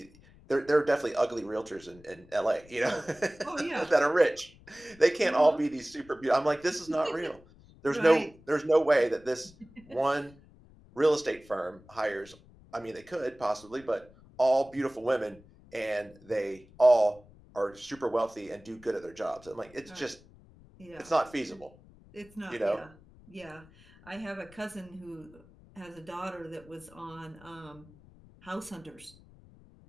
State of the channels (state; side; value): noise; left; rumble, 24 dB below the sound